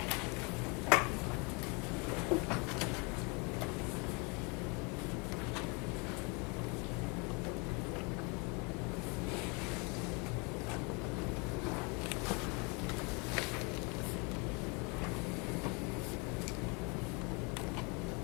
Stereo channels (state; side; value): quieter; right; 31.3 dB